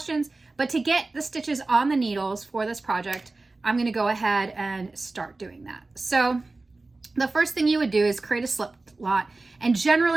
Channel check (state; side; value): quieter; left; 3.3 dB